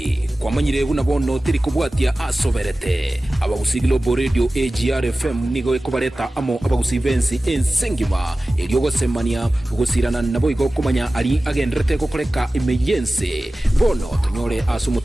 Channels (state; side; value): normal; both; correlation 0.96